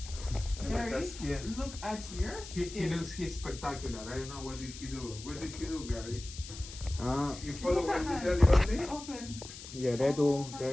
Gary, look at your skin. He's spectacular. I don't know what did he do. What did he do, Gary? You Look follow at what that. he tell you? Open. Yeah, they do.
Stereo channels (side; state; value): left; noise; hiss, 13 dB below the sound